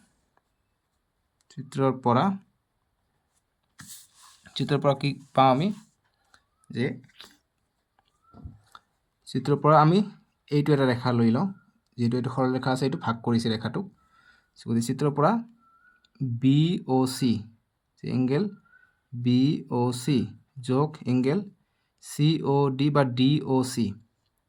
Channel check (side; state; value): both; identical; correlation 1.00